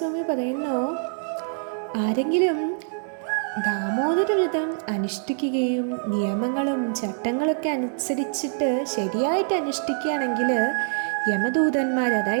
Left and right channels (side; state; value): left; silent; digital silence